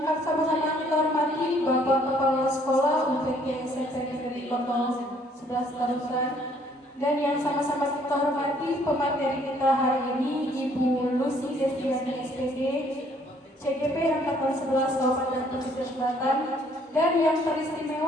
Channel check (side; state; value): both; normal; correlation 0.62